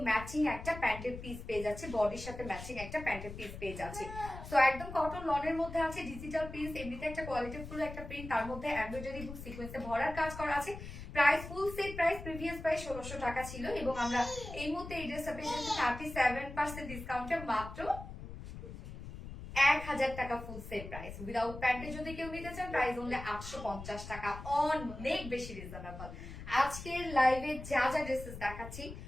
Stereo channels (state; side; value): noise; left; rumble, 11 dB below the sound